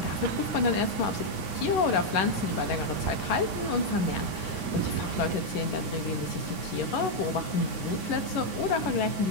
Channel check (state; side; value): late; right; 9.6 ms